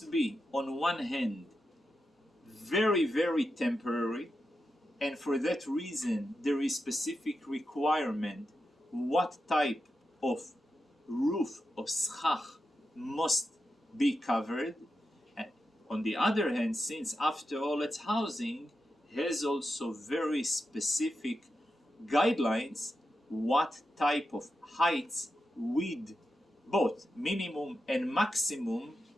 be, on one hand, very, very temporary, and for that reason there is specific requirement what type of roof of schach must be covered. And on the other hand, since after all it's housing, has also very specific guidelines what type of heights with both minimum and maximum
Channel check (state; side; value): normal; both; correlation 0.88